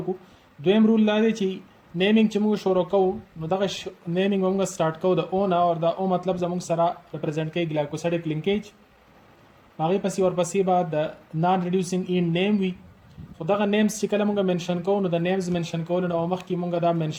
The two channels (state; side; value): identical; both; correlation 1.00